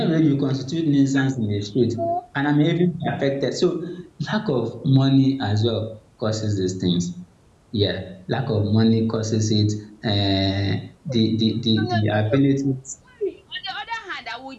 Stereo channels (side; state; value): both; identical; correlation 1.00